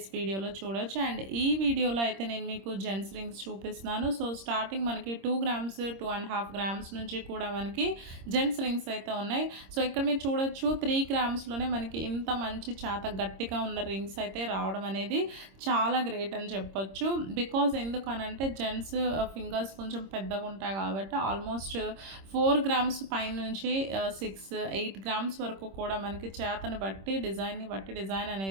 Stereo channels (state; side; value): late; left; 26 ms